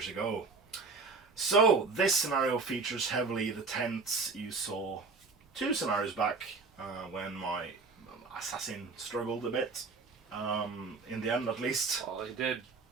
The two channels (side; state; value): left; quieter; 4.3 dB